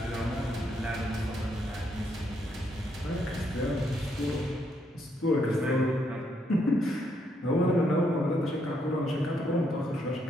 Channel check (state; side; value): normal; both; correlation 0.75